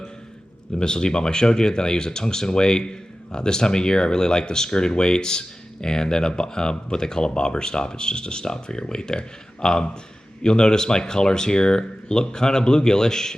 The Missile D-Bomb I showed you. Then I use a tungsten weight. This time of year, I really like the skirted weights, and then what they call a bobber stop. It's just a stop for your weight there. You'll notice my colors here look kind of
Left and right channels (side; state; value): both; normal; correlation 0.95